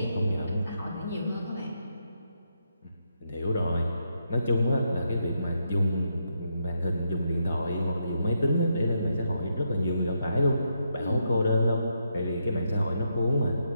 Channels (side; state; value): both; inverted; correlation -0.81